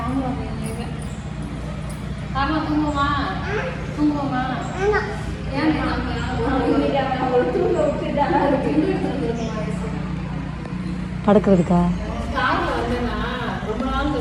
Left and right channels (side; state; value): both; identical; correlation 1.00